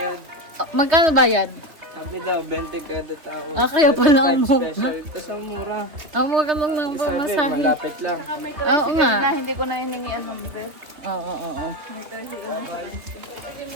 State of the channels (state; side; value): late; left; 3.5 ms